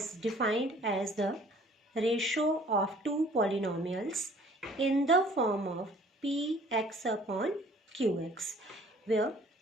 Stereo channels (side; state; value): both; normal; correlation 0.54